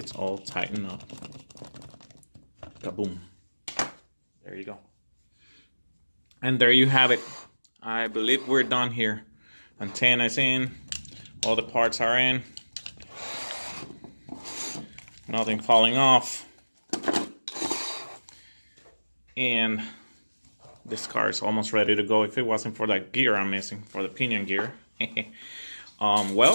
all tightened up. Kaboom. There you go. And there you have it. I believe we're done here. Antenna's in, all the parts are in, nothing falling off, and this car is almost ready to go. If it wasn't for that gear I'm missing, for the pinion gear.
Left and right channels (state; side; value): inverted; both; correlation -1.00